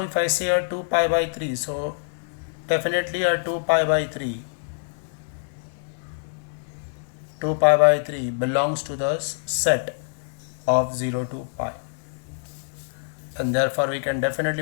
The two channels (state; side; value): silent; right; digital silence